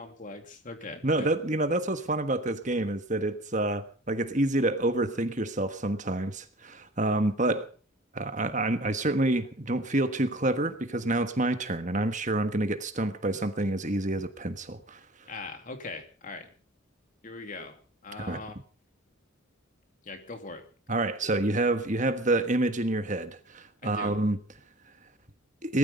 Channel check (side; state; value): both; normal; correlation 0.42